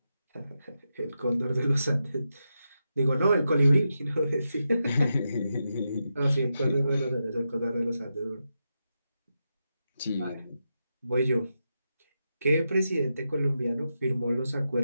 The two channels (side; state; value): both; inverted; correlation -0.87